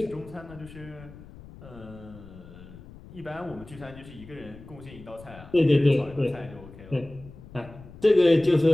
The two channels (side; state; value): left; noise; rumble, 18 dB below the sound